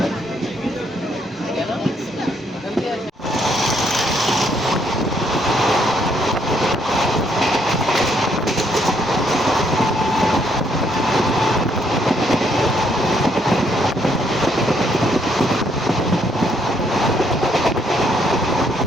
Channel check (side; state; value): both; normal; correlation 0.71